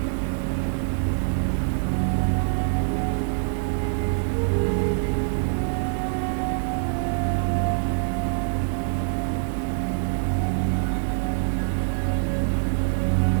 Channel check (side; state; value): left; silent; 61 dB below the other